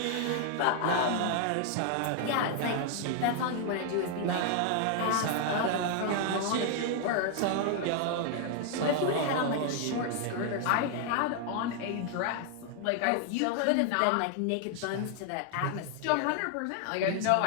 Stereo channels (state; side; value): different; both; correlation 0.00